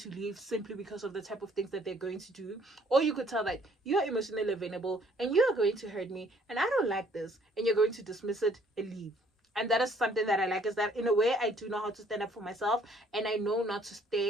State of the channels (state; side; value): normal; both; correlation 0.62